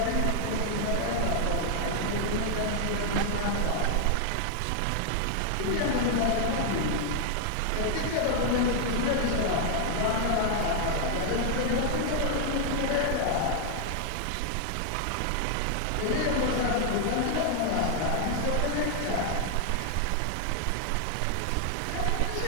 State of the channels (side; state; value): both; different; correlation 0.00